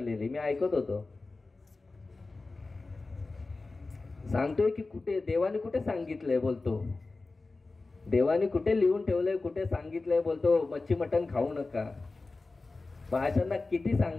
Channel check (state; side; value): quieter; right; 3.5 dB